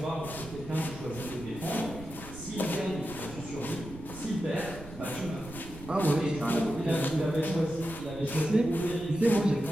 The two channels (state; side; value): noise; right; rumble, 15 dB below the sound